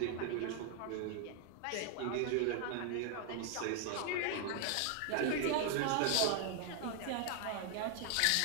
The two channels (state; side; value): different; both; correlation 0.00